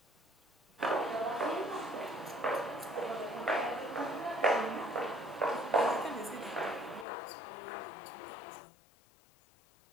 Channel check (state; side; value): drops out; right; at 7.1 s